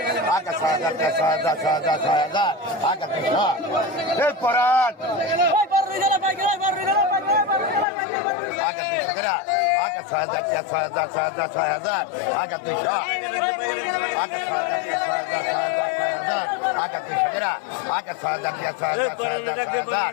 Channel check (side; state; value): right; drops out; at 7.9 s